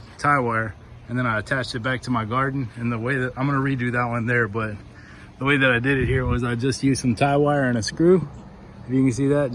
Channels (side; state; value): both; identical; correlation 1.00